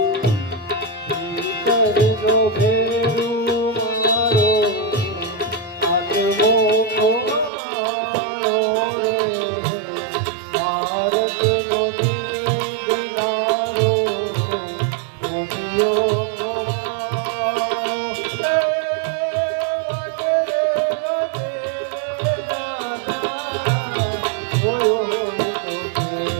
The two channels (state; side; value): drops out; left; at 7.5 s